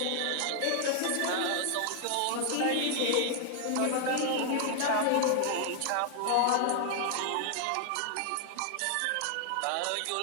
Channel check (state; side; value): different; both; correlation 0.00